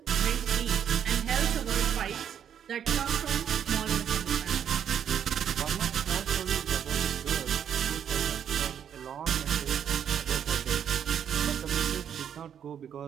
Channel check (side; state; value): left; quieter; 8.8 dB